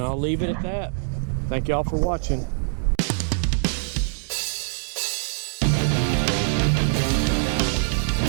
I'll leave it at that. Thank y'all for watching.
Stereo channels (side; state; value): left; silent; digital silence